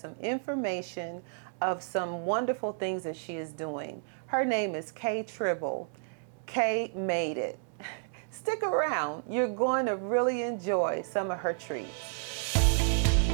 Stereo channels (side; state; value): left; silent; digital silence